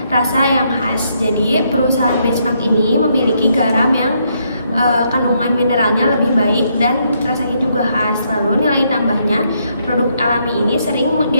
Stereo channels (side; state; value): both; inverted; correlation -0.75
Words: rasa yang khas. Jadi perusahaan benchmark ini memiliki garam yang kandungan mineralnya lebih baik dan rasanya juga khas. Lalu nilai tambahnya, produk alami ini sering